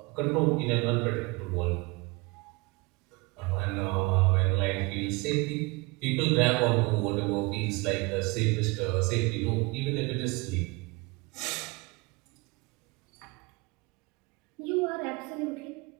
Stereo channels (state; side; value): quieter; left; 25.4 dB